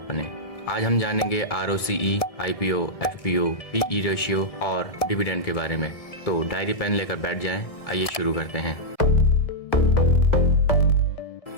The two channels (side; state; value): right; late; 1.7 ms